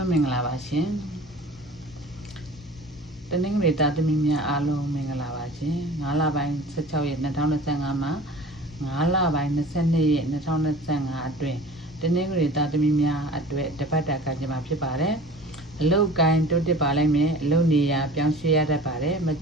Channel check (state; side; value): normal; both; correlation 0.42